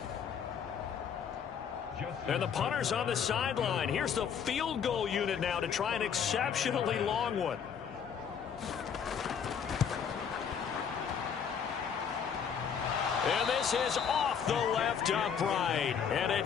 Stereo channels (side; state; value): right; quieter; 7.3 dB